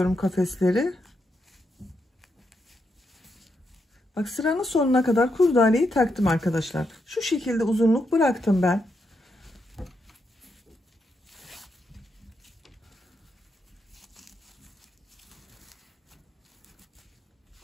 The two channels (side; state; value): both; normal; correlation 0.82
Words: kafesleri. Bak sıranın sonuna kadar kurdaleyi taktım arkadaşlar. Şu şekilde uzunluk bıraktım ben.